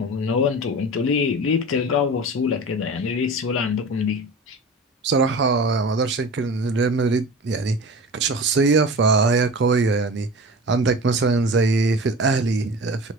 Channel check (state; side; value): normal; both; correlation 0.34